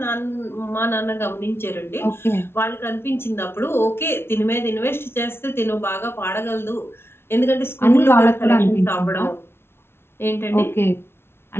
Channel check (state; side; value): late; right; 0.12 ms